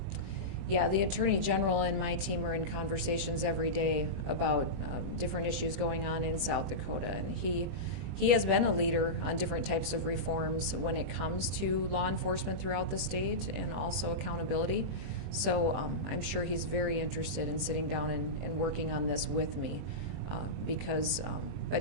Yeah, the Attorney General and my team are in conversations every day about different issues going on in South Dakota, and he has been a leader on different types of reforms when it comes to law enforcement throughout the state and also accountability. So I'm sure he's very interested in sitting down and working on this with me but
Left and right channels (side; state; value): left; late; 21 ms